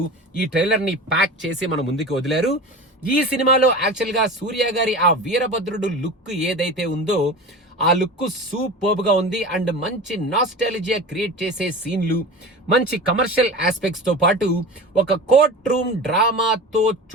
ఈ ట్రైలర్ ని ప్యాక్ చేసి మన ముందుకు వదిలారు. ఈ సినిమాలో యాక్చువల్ గా సూర్య గారి ఆ వీరభద్రుడు లుక్ ఏదైతే ఉందో ఆ లుక్ సూపర్బ్ గా ఉంది. అండ్ మంచి నాస్టాలజియా క్రియేట్ చేసే సీన్లు, మంచి కమర్షియల్ ఆస్పెక్ట్స్ తో పాటు ఒక కోర్ట్ రూమ్ డ్రామాతో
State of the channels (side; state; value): both; normal; correlation 0.32